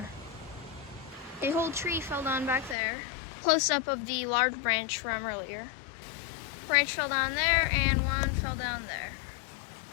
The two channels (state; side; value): drops out; right; at 2.8 s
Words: A whole tree fell down back there. Close up of the large branch from earlier. Branch fell down there and one fell down there.